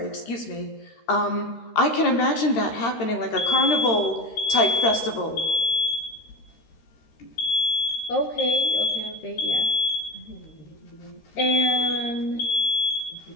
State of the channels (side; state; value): right; late; 13 ms